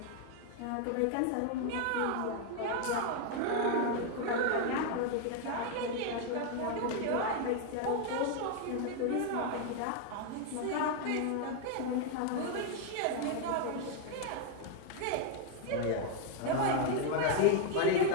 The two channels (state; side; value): different; both; correlation 0.01